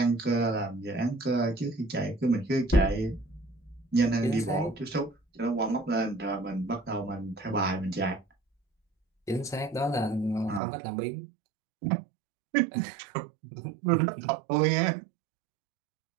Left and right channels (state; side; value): drops out; left; at 10.6 s